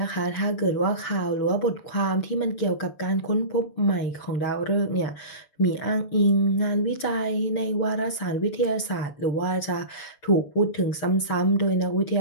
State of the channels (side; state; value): right; late; 6.8 ms